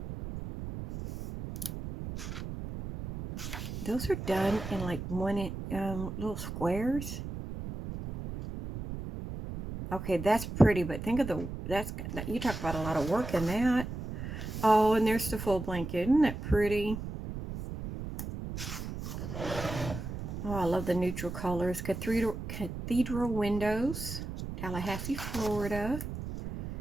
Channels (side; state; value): right; noise; rumble, 7 dB below the sound